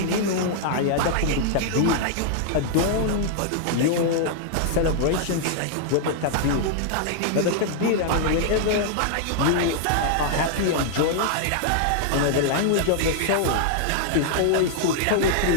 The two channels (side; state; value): both; different; correlation -0.01